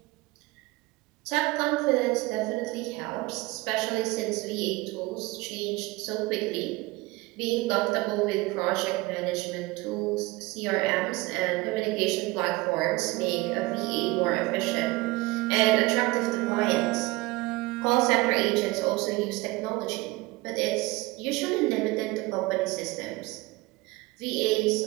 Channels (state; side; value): quieter; left; 21.7 dB